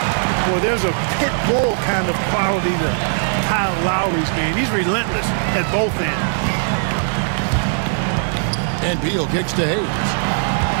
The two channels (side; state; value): left; silent; digital silence